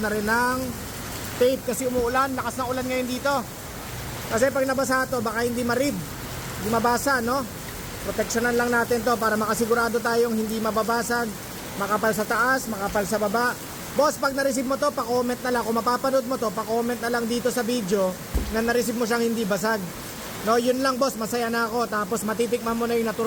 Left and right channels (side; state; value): both; identical; correlation 1.00